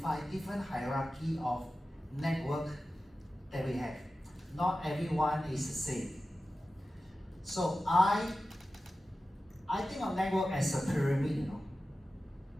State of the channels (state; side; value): normal; both; correlation 0.94